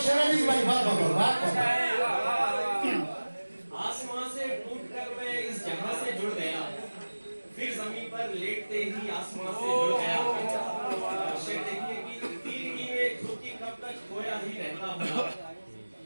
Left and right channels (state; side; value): inverted; both; correlation -1.00